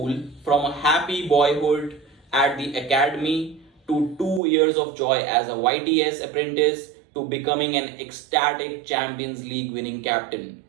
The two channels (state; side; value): drops out; left; at 4.4 s